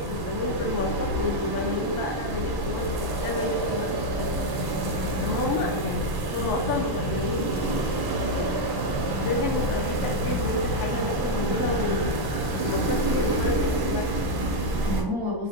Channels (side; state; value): left; late; 1.1 ms